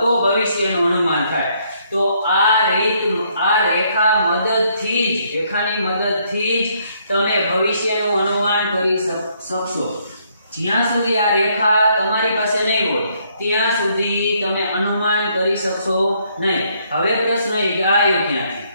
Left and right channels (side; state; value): both; inverted; correlation -0.70